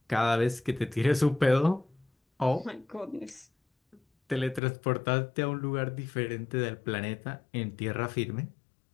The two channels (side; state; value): right; drops out; at 4.6 s